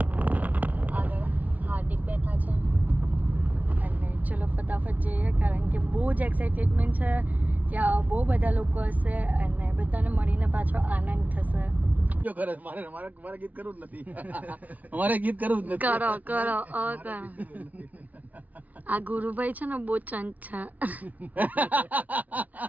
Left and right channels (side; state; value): left; late; 0.075 ms